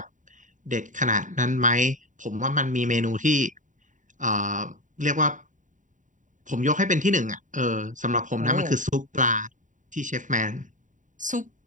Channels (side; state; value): left; late; 0.37 ms